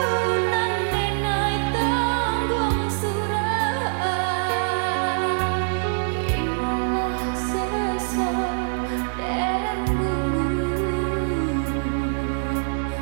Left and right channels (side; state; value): left; silent; digital silence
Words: nan denai tanggung surah. Biarlah sesa dan gunggung